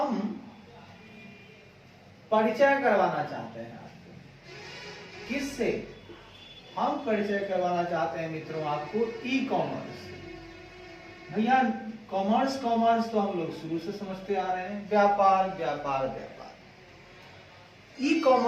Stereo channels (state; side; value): identical; both; correlation 1.00